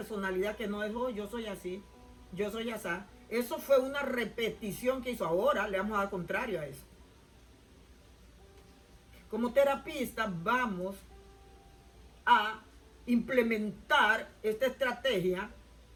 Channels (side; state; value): both; identical; correlation 1.00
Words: que no es, oh, yo soy así, yo soy así. Eso fue una repetición que hizo. Ahora le vamos a dar contrario a eso. Como terapista vamos a implementar esta estrategia